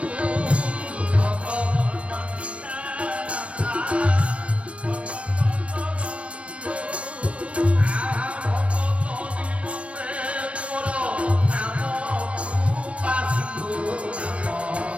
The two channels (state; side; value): late; left; 0.062 ms